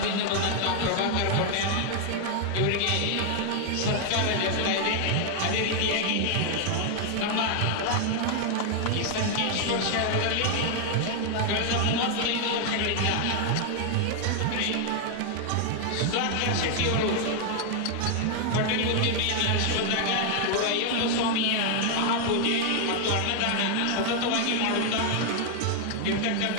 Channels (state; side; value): different; both; correlation 0.00